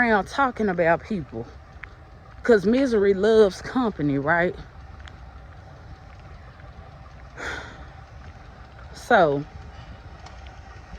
talking about people. Because misery loves company, right? So,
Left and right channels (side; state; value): both; identical; correlation 1.00